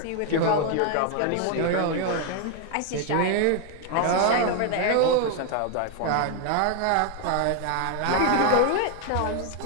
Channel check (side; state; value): both; different; correlation 0.01